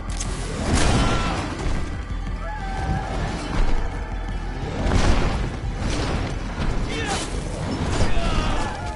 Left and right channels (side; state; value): both; identical; correlation 1.00